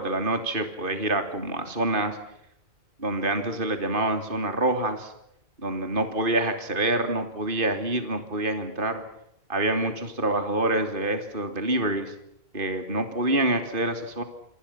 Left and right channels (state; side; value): late; left; 2.5 ms